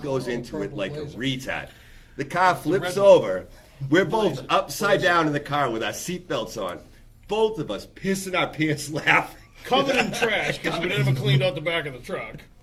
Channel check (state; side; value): identical; both; correlation 1.00